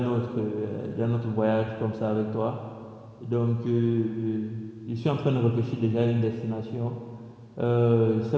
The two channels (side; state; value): both; identical; correlation 1.00